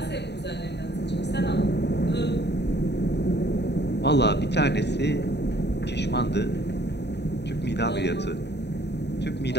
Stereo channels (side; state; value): right; late; 0.50 ms